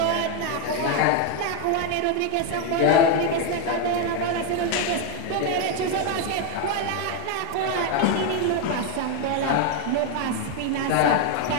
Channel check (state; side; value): different; both; correlation 0.01